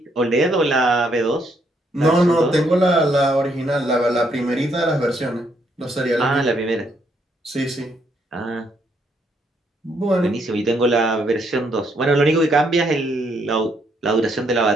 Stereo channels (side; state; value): both; normal; correlation 0.73